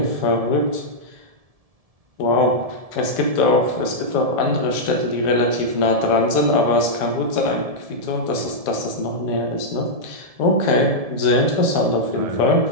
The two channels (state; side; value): late; left; 1.7 ms